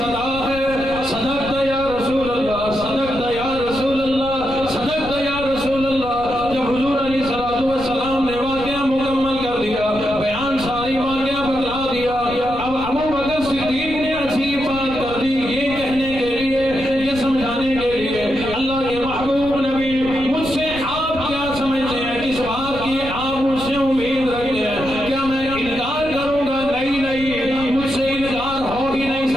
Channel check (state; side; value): noise; left; rumble, 13 dB below the sound